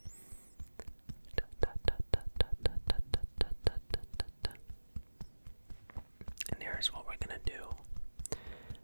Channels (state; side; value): inverted; both; correlation -1.00